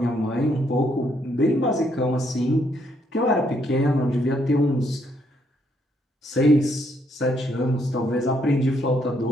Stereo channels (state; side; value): normal; both; correlation 0.72